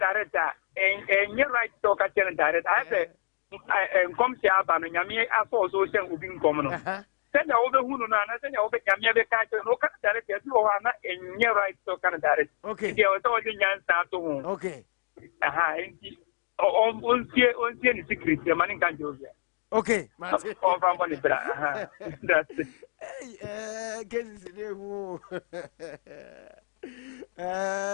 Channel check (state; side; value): silent; right; digital silence